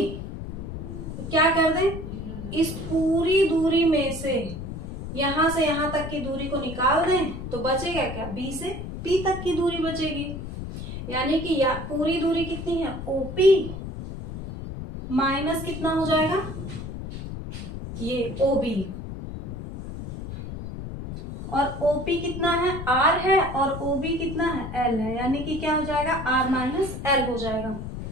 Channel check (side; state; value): left; noise; rumble, 8 dB below the sound